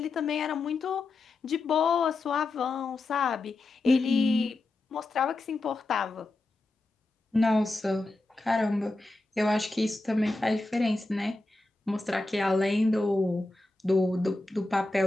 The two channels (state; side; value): quieter; right; 3.0 dB